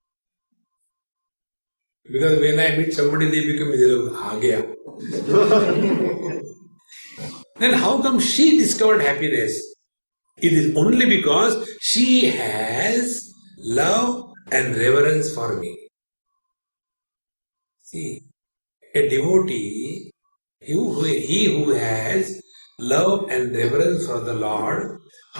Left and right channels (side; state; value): both; inverted; correlation -1.00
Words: Because when I meet somebody, they become miserable. aa gaya. Then how come she discovered happiness? It is only because she has love and reverence for me. See, a devotee, he who has love and reverence for the Lord,